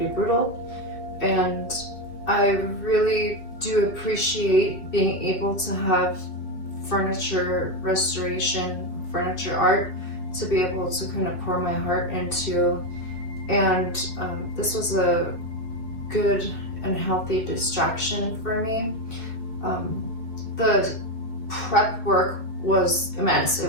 brutal, and I really do appreciate being able to have furniture restoration, furniture art, to be able to kind of pour my heart into. And this was a good and healthy distraction for me. The prep work was immense.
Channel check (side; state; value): right; late; 2.8 ms